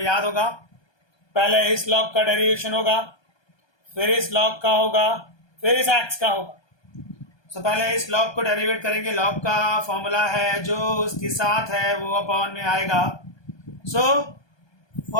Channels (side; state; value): right; late; 1.2 ms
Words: याद होगा, पहले इस log का डेरिवेशन होगा, फिर इस log का होगा, फिर इस x का होगा। सो पहले इस log को डेरिवेट करेंगे। log का फॉर्मूला है जो उसके साथ है वो अपॉन में आएगा। सो